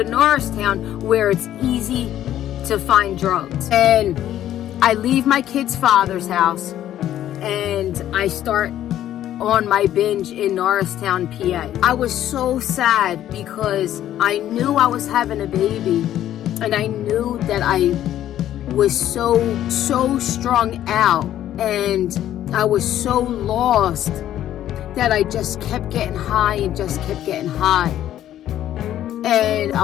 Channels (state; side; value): quieter; right; 12.0 dB